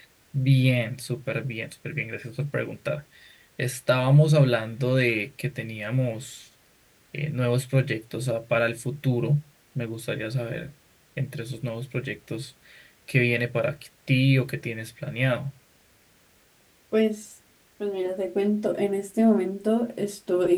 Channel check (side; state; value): both; identical; correlation 1.00